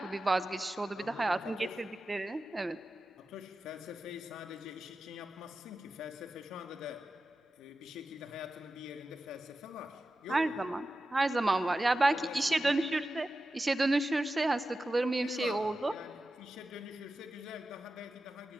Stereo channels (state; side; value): normal; both; correlation 0.93